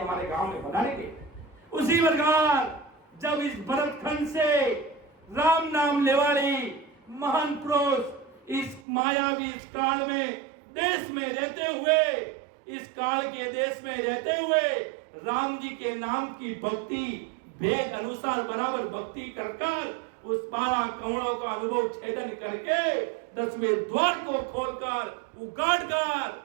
गांव में पधारेंगे। उसी प्रकार जब इस भरतखंड से राम नाम लेवाड़ी महान पुरुष इस मायावी इस काल में देश में रहते हुए, इस काल के देश में रहते हुए राम जी के नाम की भक्ति भेद अनुसार बराबर भक्ति कर उस 12 कमलों का अनुभव छेदन करके 10वें द्वार को खोलकर उगाड़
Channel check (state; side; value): drops out; left; at 8.8 s